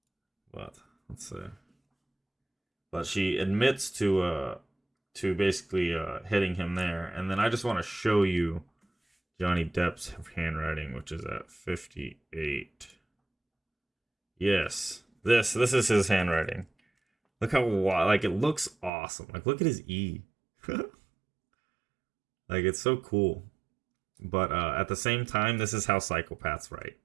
But let's see. But she admits to basically hitting him there, and then I just want to show you Johnny Depp's handwriting, which is at 58. Yes, this is his handwriting. Look how like it looks awesome. Like look at his E. Like it's so cool. But at the same time, this is how psychopaths write,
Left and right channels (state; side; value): drops out; left; at 18.9 s